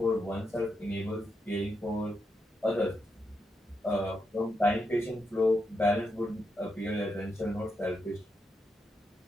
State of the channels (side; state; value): both; normal; correlation 0.83